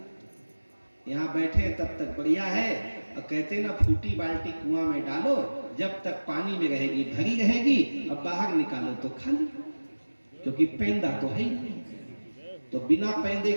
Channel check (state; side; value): inverted; both; correlation -1.00